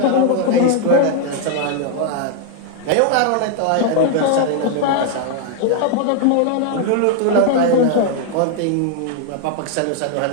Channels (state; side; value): different; both; correlation 0.00